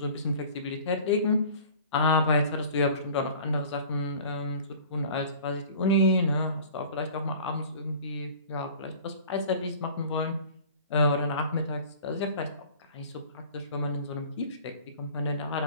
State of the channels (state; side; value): inverted; both; correlation -0.44